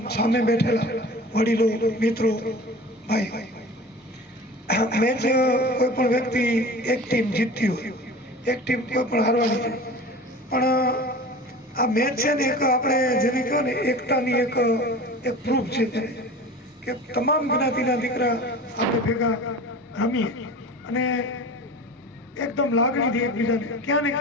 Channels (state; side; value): normal; both; correlation 0.37